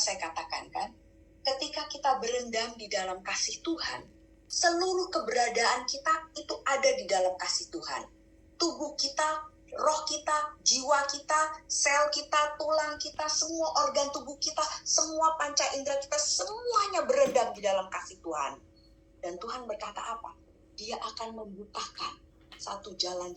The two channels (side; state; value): both; identical; correlation 1.00